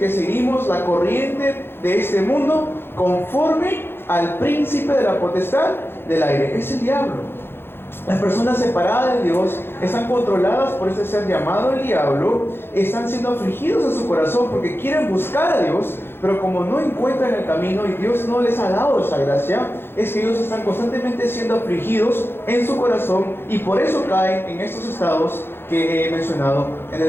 seguimos la corriente de este mundo conforme al príncipe de la potestad del aire. Es el diablo. Las personas separadas de Dios están controladas por este ser llamado el diablo, están siendo afligidos en su corazón porque quieren buscar a Dios, pero como no encuentran el camino y Dios no les ha dado esa gracia, es que ellos están constantemente siendo afligidos en su corazón, y por eso caen en estos estados que he mencionado en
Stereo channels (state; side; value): late; right; 0.11 ms